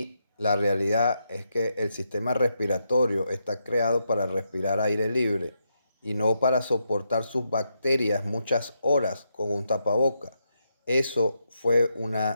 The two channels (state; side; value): inverted; both; correlation -0.82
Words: la realidad es que el sistema respiratorio está creado para respirar aire libre y no para soportar sus bacterias muchas horas con un tapaboca. Eso fue